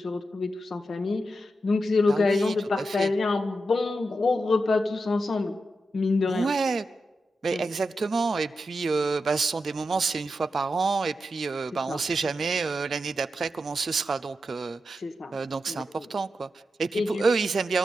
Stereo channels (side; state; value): both; normal; correlation 0.88